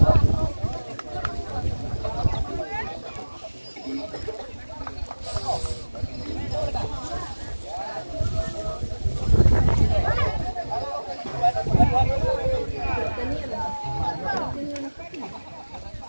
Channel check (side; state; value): both; inverted; correlation -1.00